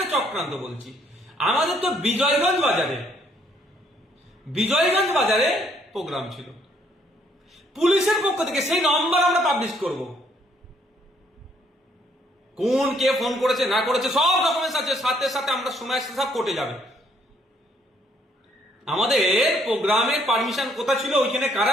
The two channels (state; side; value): normal; both; correlation 0.67